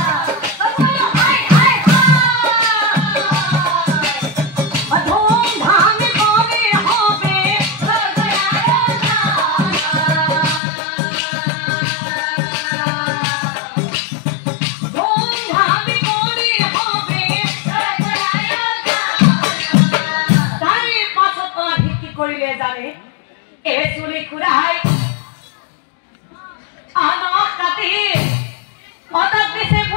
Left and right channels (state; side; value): drops out; right; at 10.6 s